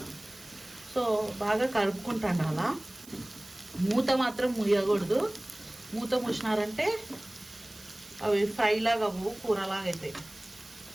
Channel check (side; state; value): right; noise; hiss, 20 dB below the sound